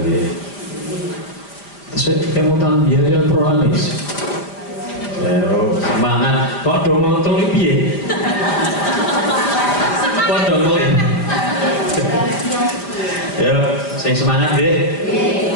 nggih. Terus kemutan biaya prolanis. Semangat kok do ngontrol piye? Kok do ngelih? Ya, sing semangat nggih.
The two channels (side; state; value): right; late; 4.9 ms